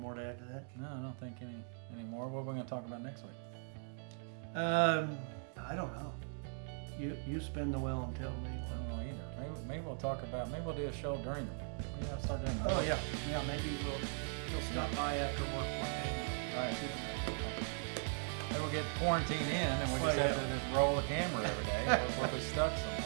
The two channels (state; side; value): silent; left; 51 dB below the other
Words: to add to that. No, I don't think any more. What are we gonna talk about next week? I don't know. You spin the wheel and tell me. I don't know either. Maybe we'll talk about. Maybe we'll do a show during the week. We have to start doing that. Oh yeah, yeah. Maybe you'll stop by after work one day. Right. Maybe we'll get quarantined in, and we Well, just have yeah. to just roll the camera every day. If we're stuck